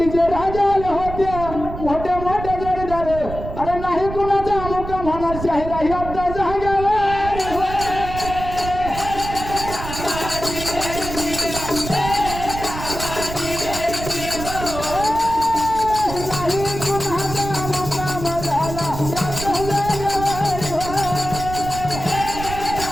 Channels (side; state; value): right; noise; rumble, 8 dB below the sound